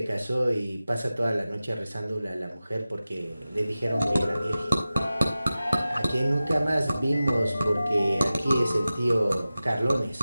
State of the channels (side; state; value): both; inverted; correlation -0.95